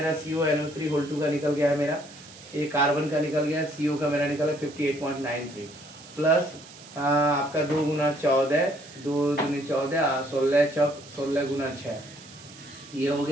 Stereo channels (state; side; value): noise; right; hiss, 19 dB below the sound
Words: CuNO3 का निकल गया है मेरा। ये कार्बन का निकल गया, CO का मेरा निकला 58.93 प्लस आपका 2 गुना 14, 2 दूनी 14, 16 चौक 16 गुना 6, ये हो